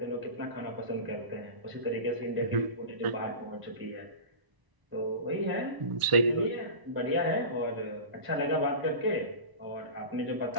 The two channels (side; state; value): left; late; 1.0 ms